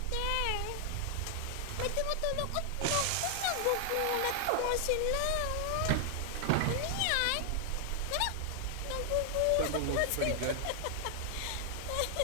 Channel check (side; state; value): both; different; correlation 0.00